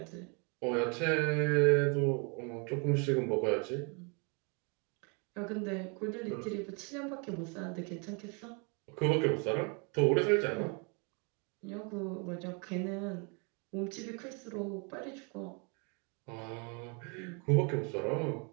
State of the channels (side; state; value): left; quieter; 34.4 dB